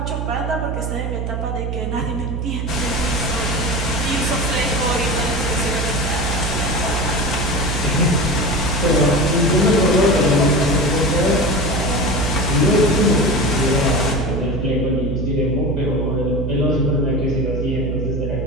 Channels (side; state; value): right; noise; hum, 2 dB below the sound